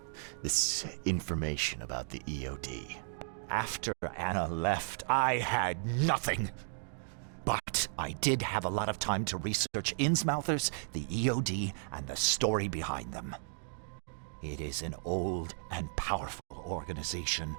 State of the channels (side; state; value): left; silent; 55 dB below the other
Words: This information about the EOD? After Anna left, I had nothing. But I did have a lot of time to research Innsmouthers, the EOD, and the story behind them. It is an old and powerful organization.